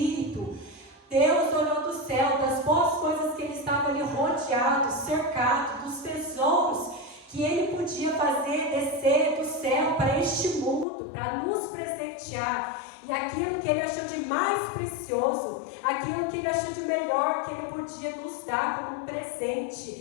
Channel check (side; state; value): right; drops out; at 10.9 s